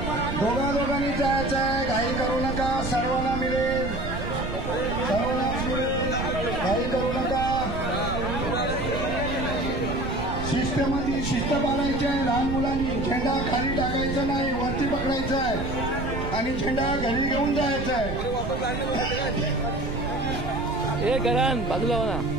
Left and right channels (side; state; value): right; noise; rumble, 6 dB below the sound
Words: दोघांनी जायचं आहे. घाई करू नका. सर्वांना मिळेल. सर्वांनाच मिळेल. घाई करू नका. शिस्तमध्ये शिस्त पाळायची आहे. लहान मुलांनी झेंडा खाली टाकायचा नाही, वरती पकडायचा आहे आणि झेंडा घरी घेऊन जायचा आहे. ए करण बाजूला हो ना.